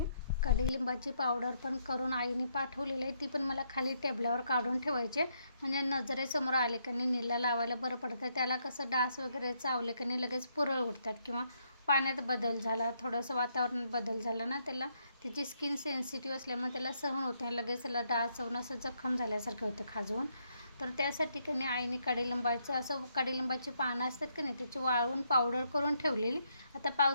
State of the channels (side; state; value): both; inverted; correlation -0.75